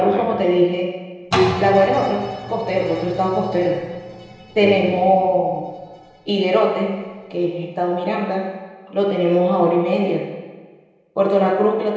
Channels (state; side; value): identical; both; correlation 1.00